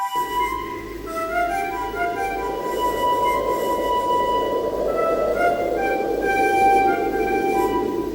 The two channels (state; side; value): identical; both; correlation 1.00